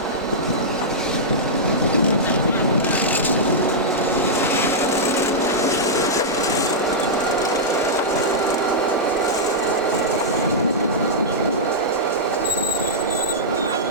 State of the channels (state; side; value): normal; both; correlation -0.11